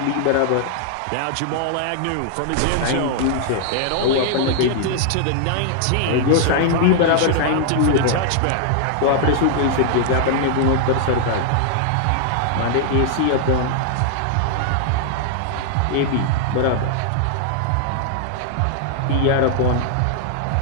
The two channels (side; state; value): both; different; correlation 0.00